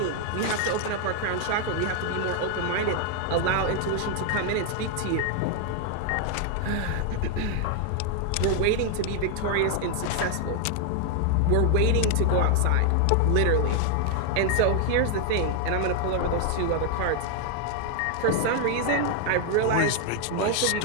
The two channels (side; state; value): both; different; correlation 0.00